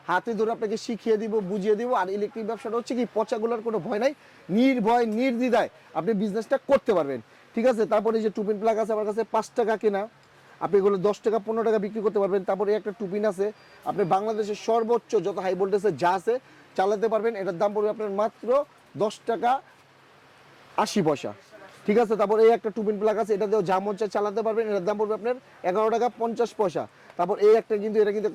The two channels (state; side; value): identical; both; correlation 1.00